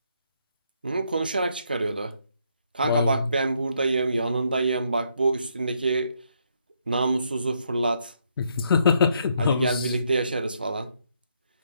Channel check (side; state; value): both; inverted; correlation -0.74